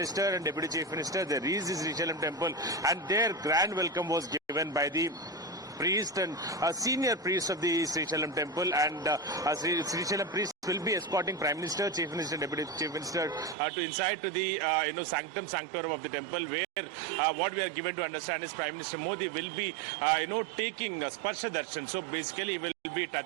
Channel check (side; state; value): left; drops out; at 13.6 s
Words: and Deputy Chief Minister, they reached the Srisailam Temple, and their grand welcome was given by the priest and senior priest of the Srisailam Temple. And Srisailam priest will be escorting Prime Minister, Chief Minister, Deputy Chief Minister to inside to the sanctum sanctorum of the temple, where what we are given to understand is Prime Minister Modi will be taking Sparsha Darshan. So basically he will be